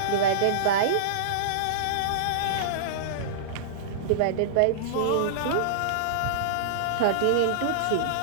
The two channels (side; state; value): both; different; correlation -0.03